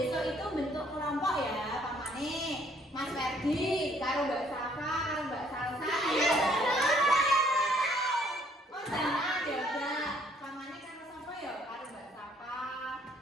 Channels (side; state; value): both; normal; correlation 0.63